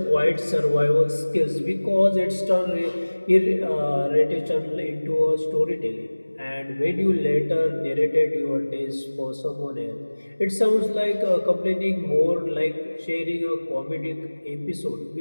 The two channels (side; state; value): both; inverted; correlation -1.00